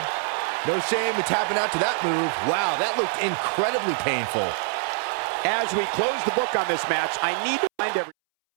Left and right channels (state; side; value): silent; left; 62 dB below the other